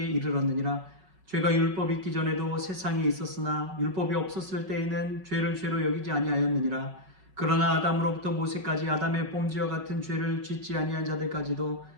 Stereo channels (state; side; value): late; left; 5.3 ms